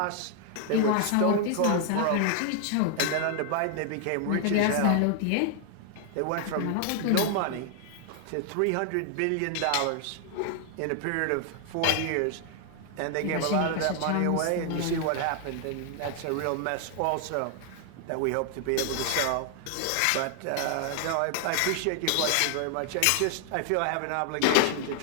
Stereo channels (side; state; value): both; different; correlation 0.00